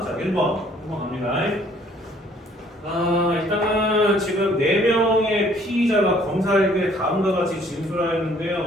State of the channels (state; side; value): normal; both; correlation 0.60